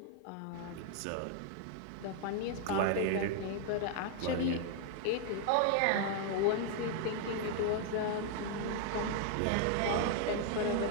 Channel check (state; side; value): different; both; correlation 0.00